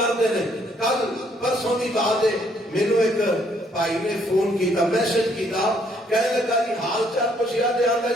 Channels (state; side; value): normal; both; correlation 0.67